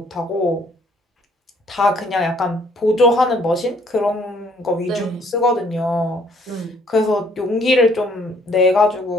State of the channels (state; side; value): normal; both; correlation 0.63